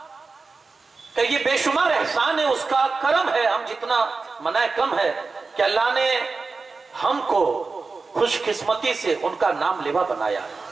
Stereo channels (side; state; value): left; quieter; 4.2 dB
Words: کہ یہ بے شمار احسان ہے، اس کا کرم ہے، ہم جتنا منائے کم ہے کہ اللہ نے ہم کو خوش قسمتی سے ان کا نام لیوا بنایا ہے۔